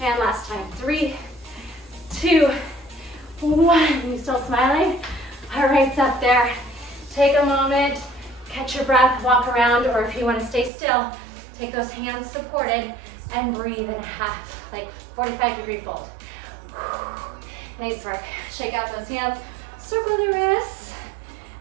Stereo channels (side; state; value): left; drops out; at 10.7 s